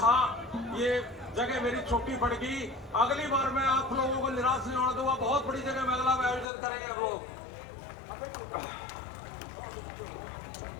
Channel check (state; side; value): drops out; right; at 6.5 s